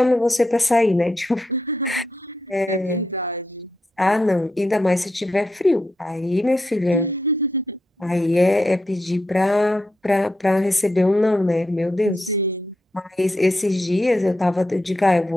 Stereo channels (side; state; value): both; normal; correlation 0.84